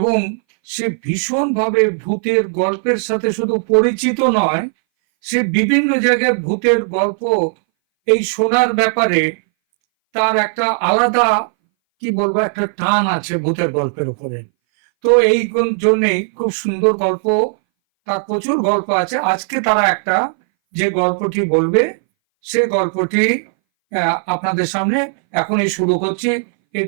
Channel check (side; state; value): left; silent; 62 dB below the other